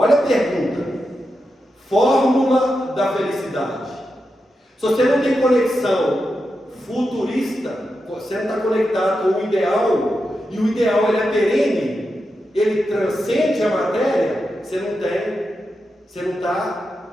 a pergunta, fórmula da felicidade. Se você não tem conexão futurista, você não está conectado com o ideal, e o ideal ele é perene, ele transcende a matéria, você não está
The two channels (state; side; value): normal; both; correlation 0.88